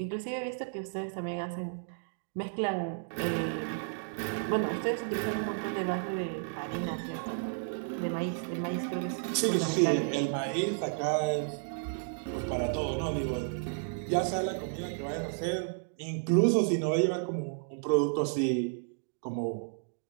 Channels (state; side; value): silent; left; digital silence